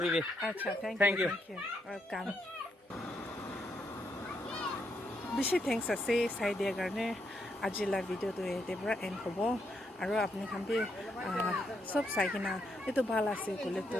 আচ্ছা থ্যাংক ইউ ওয়েলকাম বেছি থ্যাংকস আছে চাই দিয়াৰ কাৰণে আজিলা ভিডিঅ'টো এতে পৰা এণ্ড হ'ব আৰু আপুনি খান বি সব চাই কিনা এইটো ভাল আছে ক'লে তো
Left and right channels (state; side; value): normal; both; correlation 0.78